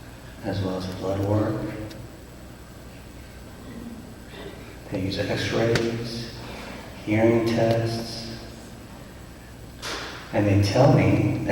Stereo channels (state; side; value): identical; both; correlation 1.00